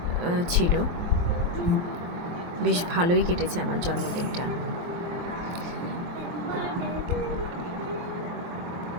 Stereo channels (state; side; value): late; left; 23 ms